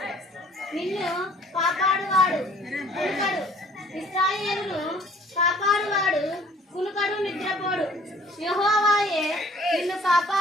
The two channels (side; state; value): both; normal; correlation 0.55